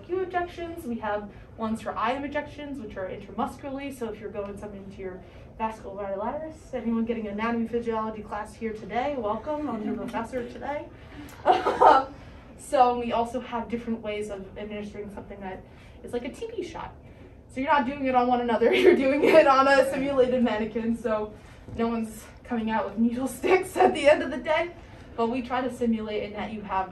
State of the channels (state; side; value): identical; both; correlation 1.00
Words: injections. We have ones for IM injections, which are intramuscularly. So if you're going something into your vasculitis, anyone getting an anatomy physiology class here today, welcome. I'm your professor today. So we also have different ways of administering something that is like a TB shot. So you're not doing it on one another, you're doing it on a simulated mannequin. So no one's coming out with needle sticks at the end of the day, but we try to simulate in that you have